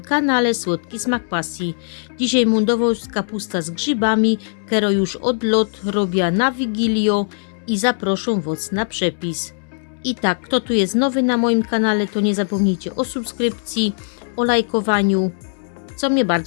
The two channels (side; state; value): right; silent; digital silence